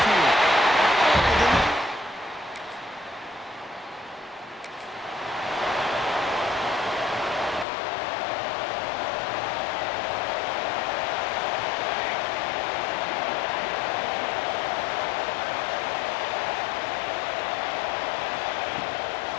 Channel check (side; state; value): right; drops out; at 7.7 s